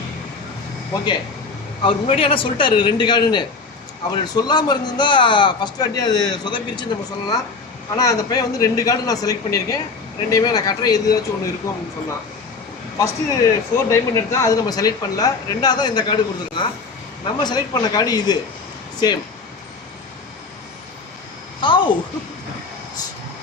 ஓகே. அவர் முன்னாடி ஆனால் சொல்லிட்டாரு 2 கார்டுன்னு. அவர் சொல்லாமல் இருந்திருந்தா ஃபஸ்ட் வாட்டி அது சொதப்பிருச்சுன்னு நம்ம சொல்லலாம். ஆனால் அந்த பையன் வந்து 2 கார்டு நான் செலக்ட் பண்ணியிருக்கேன். 2யுமே நான் காட்டுறேன் எதுவாச்சும் ஒன்று இருக்கும் அப்படின்னு சொன்னான். ஃபஸ்ட்டு 4 டைமண்ட் எடுத்தால் அது நம்ம செலக்ட் பண்ணல. 2வது தான் இந்த கார்டு கொடுத்துருக்கான். நம்ம செலக்ட் பண்ண கார்டு இது சேம். ஹவ்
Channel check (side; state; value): right; quieter; 4.3 dB